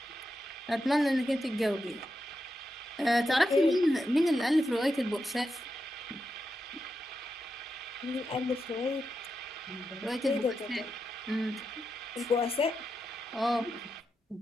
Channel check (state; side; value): normal; both; correlation 0.87